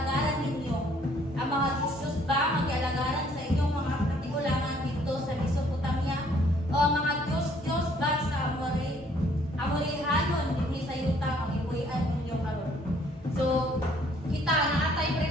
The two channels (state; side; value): normal; both; correlation 0.62